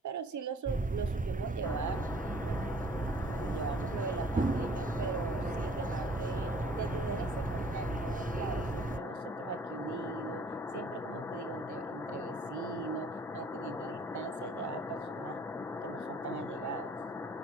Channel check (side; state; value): both; normal; correlation 0.55